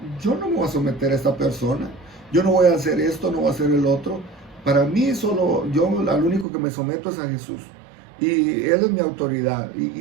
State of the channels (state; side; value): drops out; left; at 6.5 s